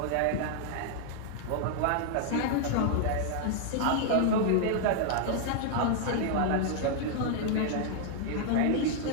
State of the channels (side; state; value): both; different; correlation 0.00